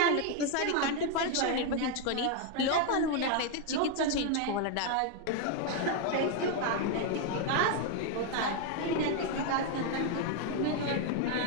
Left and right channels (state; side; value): different; both; correlation 0.01